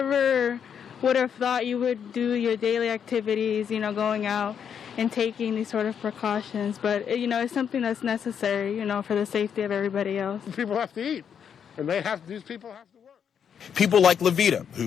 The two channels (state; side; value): quieter; right; 7.8 dB